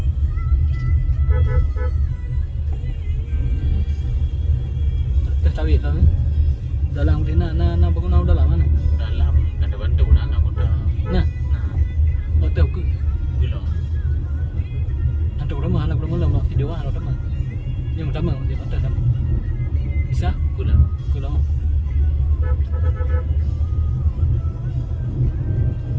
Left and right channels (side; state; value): both; identical; correlation 1.00